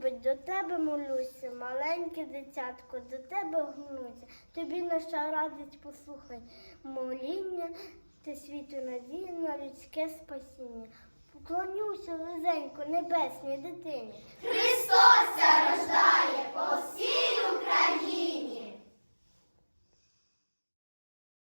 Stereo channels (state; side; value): inverted; both; correlation -1.00